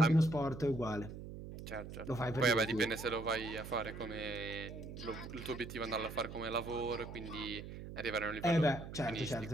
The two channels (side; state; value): right; noise; hum, 10 dB below the sound